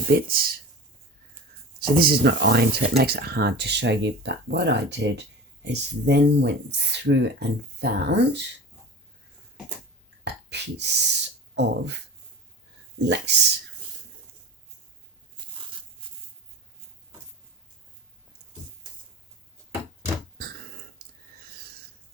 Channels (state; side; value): normal; both; correlation 0.34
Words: bits. So this is not ironed, so it makes it hard to show you, but what I did is then went through and found a piece of lace.